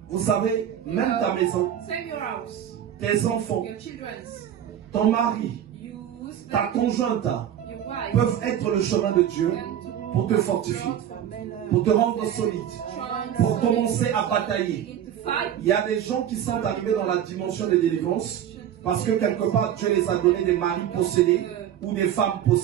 Vous savez, même ta maison, tes enfants, ton mari, ta conjointe peuvent être le chemin de Dieu pour te fortifier, pour te rendre solide, pour commencer à batailler. Il y a des gens qui sont arrivés dans la dimension de délivrance parce que quelque part Dieu les a donné des maris possédés ou des femmes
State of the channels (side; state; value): left; quieter; 10.1 dB